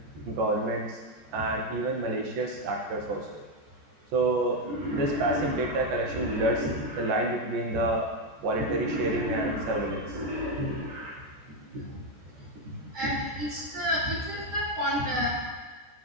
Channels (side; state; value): left; late; 14 ms